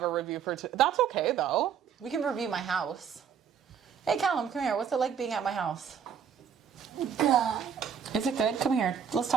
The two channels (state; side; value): quieter; left; 7.7 dB